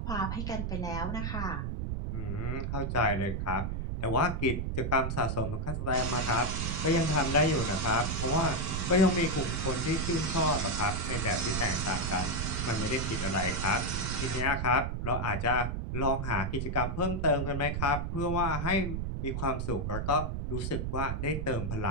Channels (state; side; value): noise; right; rumble, 2 dB below the sound